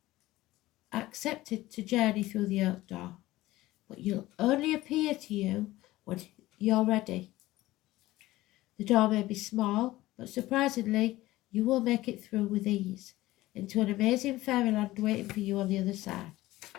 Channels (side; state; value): right; quieter; 17.3 dB